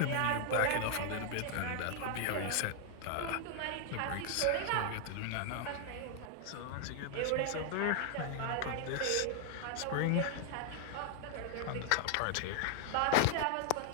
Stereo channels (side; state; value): both; different; correlation 0.00